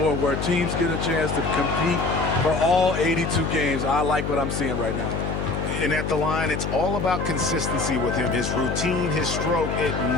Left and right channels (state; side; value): noise; left; hum, 3 dB below the sound